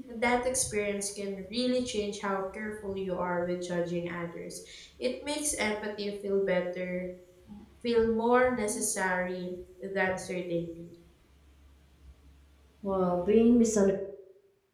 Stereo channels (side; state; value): both; identical; correlation 1.00